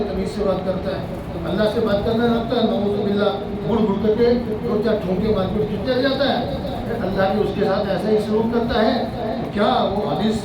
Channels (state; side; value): identical; both; correlation 1.00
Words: تمیز سے بات کرتا ہے، اللہ سے بات کرنا رکھتا ہے، نعوذ باللہ گڑ گڑ کر کے 2-4 ٹھونکے مار کے چل جاتا ہے۔ اللہ بھی اس کے ساتھ ایسا ہی سلوک کرتا ہے۔ کیا وہ حدیث